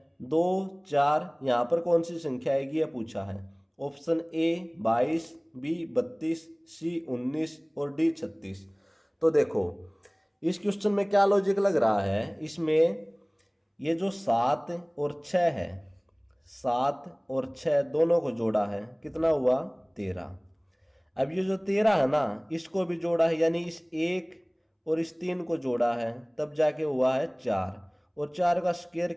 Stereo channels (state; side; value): identical; both; correlation 1.00